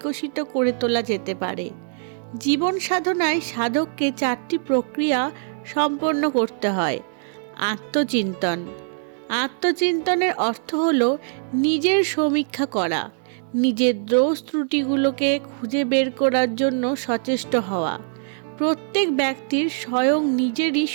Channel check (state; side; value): silent; left; 64 dB below the other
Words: করে তোলা যেতে পারে। জীবন সাধনায় সাধককে 4টি প্রক্রিয়া সম্পন্ন করতে হয়। আত্মচিন্তন। আত্মচিন্তনের অর্থ হল নিজের সমীক্ষা করা, নিজের দোষ ত্রুটিগুলোকে খুঁজে বের করার জন্য সচেষ্ট হওয়া। প্রত্যেক ব্যক্তির স্বয়ং নিজেরই